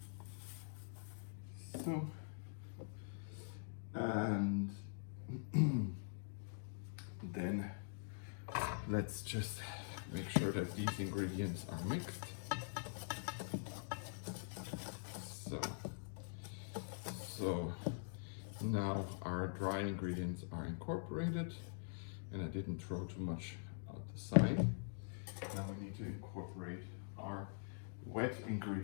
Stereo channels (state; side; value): silent; right; digital silence